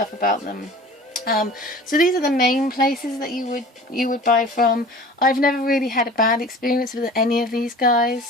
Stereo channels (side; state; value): both; normal; correlation 0.42